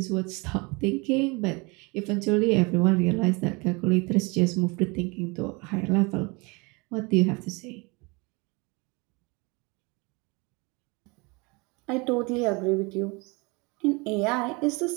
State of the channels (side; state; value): left; quieter; 27.9 dB